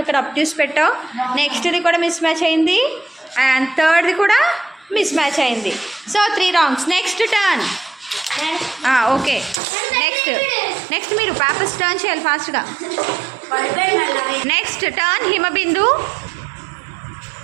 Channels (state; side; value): drops out; left; at 9.6 s